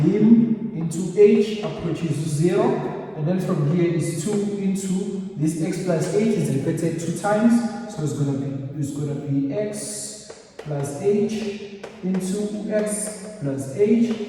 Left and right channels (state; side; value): identical; both; correlation 1.00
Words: lim into h approaches 0, and then from here is 2 into this x plus h is repeated 2 times, so it's gonna be x plus h into x plus h,